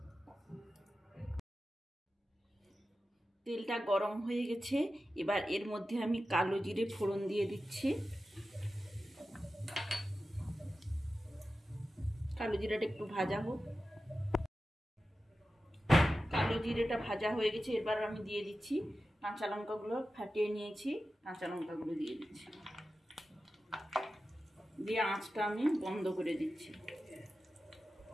তেলটা গরম হয়ে গেছে। এবার এর মধ্যে আমি কালো জিরে ফোড়ন দিয়ে দিচ্ছি। কালো জিরাটা একটু ভাজা হোক। কালো জিরেটা ভাজা হয়ে গেছে। এবার আমি দিয়ে দিচ্ছি কাঁচা লঙ্কাগুলো, ফাটিয়ে নিয়েছি, কাঁচা লঙ্কাগুলো দিয়ে দিচ্ছি, দিয়ে আঁচটা আমি বন্ধ করে দিচ্ছি।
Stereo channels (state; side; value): normal; both; correlation 0.93